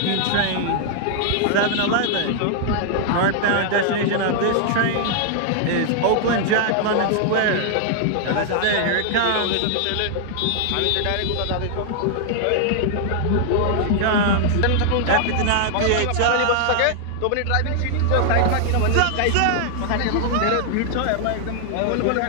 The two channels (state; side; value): different; both; correlation -0.01